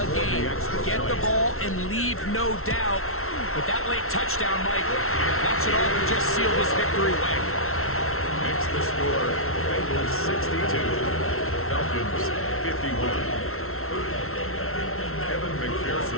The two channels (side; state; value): right; late; 0.62 ms